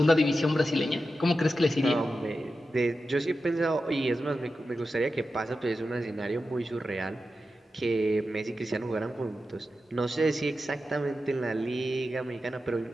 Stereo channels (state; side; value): normal; both; correlation 0.91